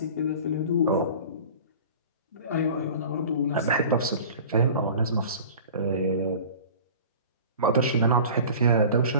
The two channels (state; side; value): inverted; both; correlation -0.41